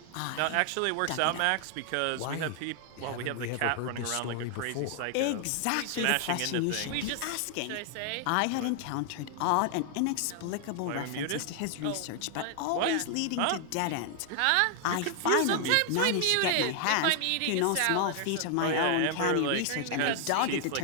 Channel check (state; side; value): different; both; correlation 0.00